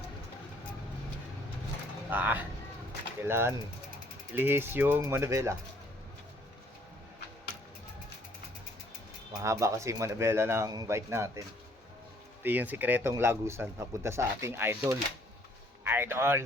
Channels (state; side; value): normal; both; correlation 0.62